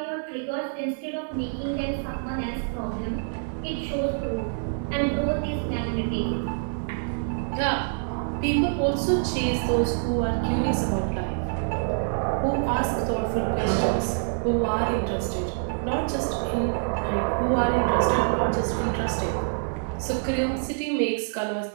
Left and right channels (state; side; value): silent; left; digital silence